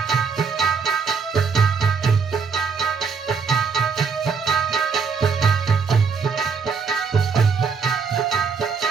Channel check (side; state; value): left; quieter; 5.5 dB